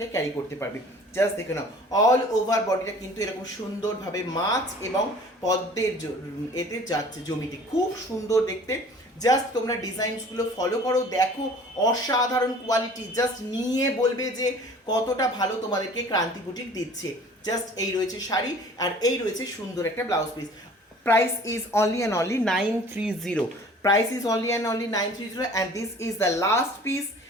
ক্যারি করতে পারবে। জাস্ট দেখে নাও, অল ওভার বডিটা কিন্তু এরকম সুন্দরভাবে মাছ এবং পদ্মের এতে যাচ্ছে জমিতে, খুব সুন্দর দেখতে। জাস্ট তোমরা ডিজাইনসগুলো ফলো করো, দেখো অসাধারণ কোয়ালিটি, জাস্ট নিয়ে বলবে যে কতটা ভালো তোমাদেরকে ক্রান্তি বুটিক দিচ্ছে। জাস্ট এই রয়েছে শাড়ি আর এই রয়েছে সুন্দর একটা blouse piece. Price is only and only 930. Price is only and only 930 and this is the last piece.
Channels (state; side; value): normal; both; correlation 0.48